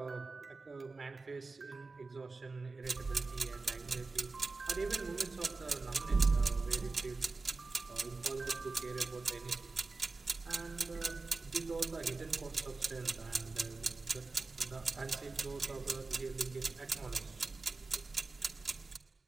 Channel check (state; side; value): quieter; left; 3.8 dB